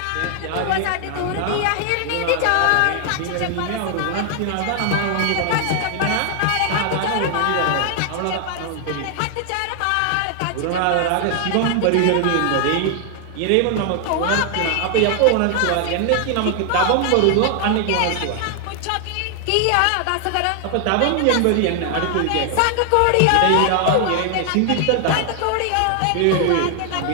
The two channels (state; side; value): different; both; correlation 0.00